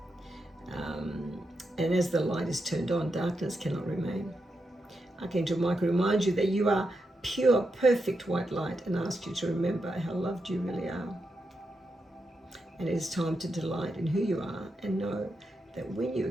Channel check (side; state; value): both; normal; correlation 0.85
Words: and as the light is turned on, darkness cannot remain. Archangel Michael reminds you that you are pure, perfect white light and asks you to remember how loved you really are. And it is time to delight in who you are and know that when you